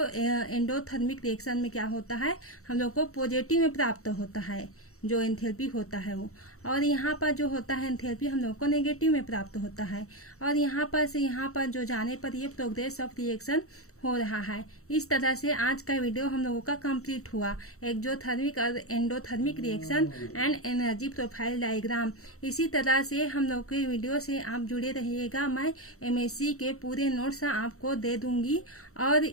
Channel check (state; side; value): late; right; 0.64 ms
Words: एंडोथर्मिक रिएक्शन में क्या होता है हम लोग को पॉजिटिव में प्राप्त होता है जो एंथैल्पी होता है वो। और यहाँ पर जो होता है एंथैल्पी हम लोग को नेगेटिव में प्राप्त होता है। और यहाँ पर से यहाँ पर जो जाने पर ये प्रोग्रेस ऑफ रिएक्शन हो रहा है। इस तरह से आज का वीडियो हम लोगों का कंप्लीट हुआ, एक्सोथर्मिक और endothermic reaction and energy profile diagram. इसी तरह से हम लोग के वीडियो से आप जुड़े रहिएगा, मैं एमएससी के पूरे नोट्स आपको दे दूंगी और